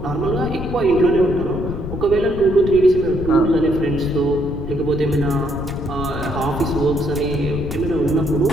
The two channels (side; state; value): left; noise; rumble, 7 dB below the sound